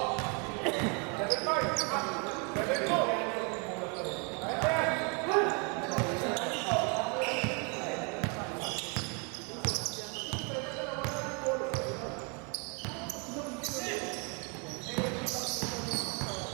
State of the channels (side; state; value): left; quieter; 34.6 dB